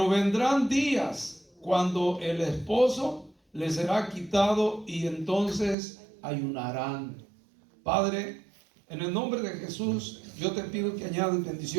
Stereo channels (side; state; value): left; drops out; at 5.8 s